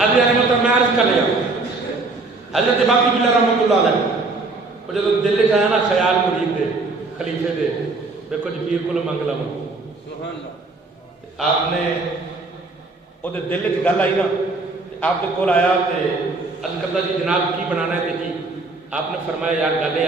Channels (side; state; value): left; quieter; 3.5 dB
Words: ابھی نے مطلب میں عرض کر لیا حضرت باقی بلّہ رحمت اللہ علیہ وہ جب دل چ آیا نا خیال مرید دے خلیفے دے دیکھو جی پیر کو منگ لو آپ نے وہ دل چ گل آئی نا آپ کے کول آیا تو عرض کرتا جی جناب کی بنانا ہے جی آپ نے فرمایا یار گل